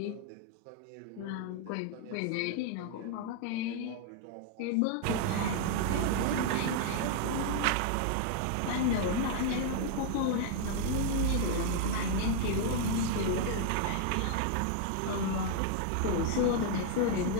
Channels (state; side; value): different; both; correlation 0.00